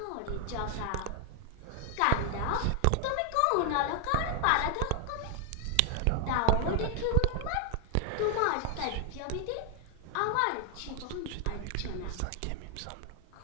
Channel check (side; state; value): both; different; correlation 0.00